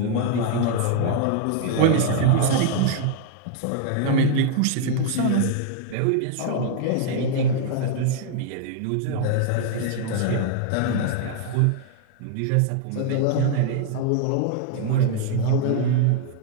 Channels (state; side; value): different; both; correlation 0.00